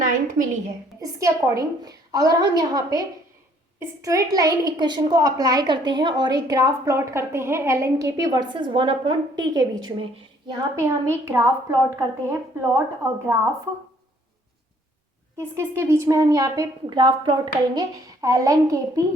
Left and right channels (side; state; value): both; normal; correlation 0.62